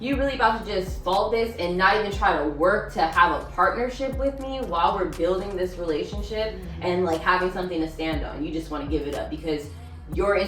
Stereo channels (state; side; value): identical; both; correlation 1.00